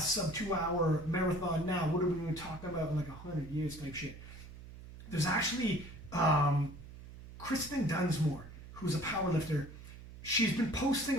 2 hour marathon now. What are we going to talk about in like 100 years type shit? There's actually Kristen Dunsmore, who's a powerlifter. She's been posting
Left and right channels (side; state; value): right; noise; hum, 15 dB below the sound